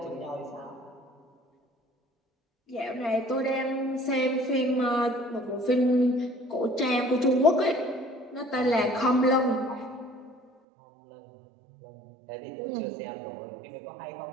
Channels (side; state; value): left; drops out; at 10.5 s